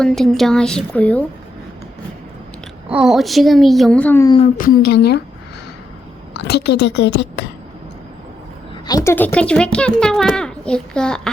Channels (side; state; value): both; normal; correlation 0.80